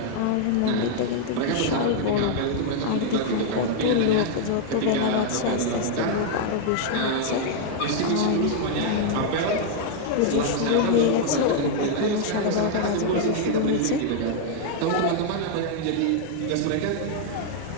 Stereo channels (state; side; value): different; both; correlation 0.00